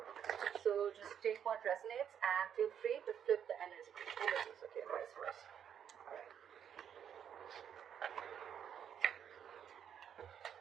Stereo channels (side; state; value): left; quieter; 8.7 dB